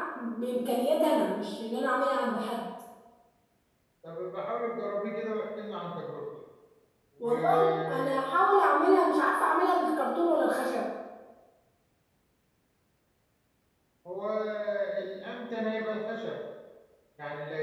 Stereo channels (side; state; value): both; identical; correlation 1.00